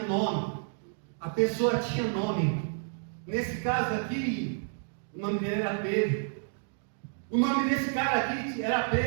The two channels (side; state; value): left; silent; digital silence